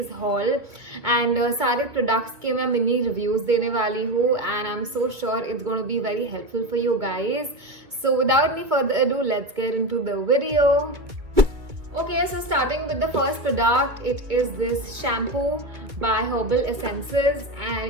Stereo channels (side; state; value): left; late; 2.4 ms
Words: haul and सारे products के मैं mini reviews देने वाली हूँ and I'm so sure it's going to be very helpful for you guys. So without any further ado, let's get into the video. Okay, so starting with the first product, it is this shampoo by Herbal Essences and